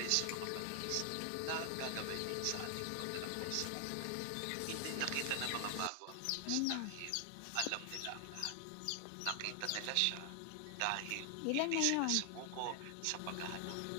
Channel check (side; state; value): both; different; correlation 0.00